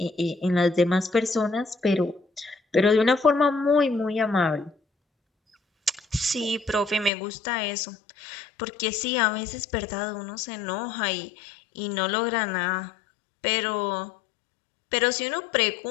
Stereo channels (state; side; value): drops out; right; at 7.1 s